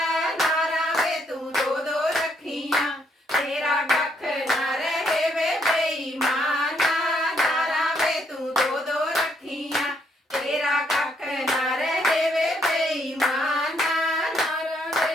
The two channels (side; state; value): both; normal; correlation 0.72